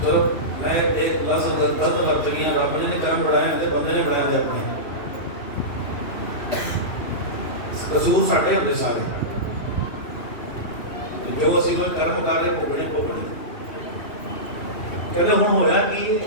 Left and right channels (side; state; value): right; late; 2.8 ms